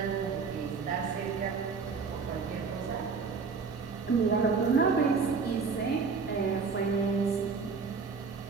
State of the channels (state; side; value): quieter; left; 5.1 dB